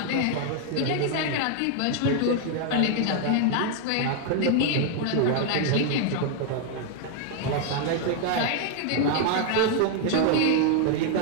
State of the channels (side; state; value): both; different; correlation 0.00